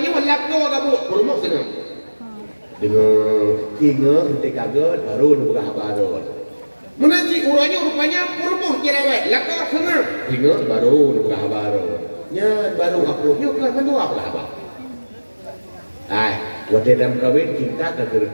malap kau agak buat burung senang. Dengan tiga henti kaget baru dia buka habai tu. Menaji orangnya rupanya burung cerewet, lakar senang. Tiga baru dia buka habai tu. Nya baru aku kan mandua buka habai. Ai, waktu dalam kahwin cinta tak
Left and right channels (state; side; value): inverted; both; correlation -1.00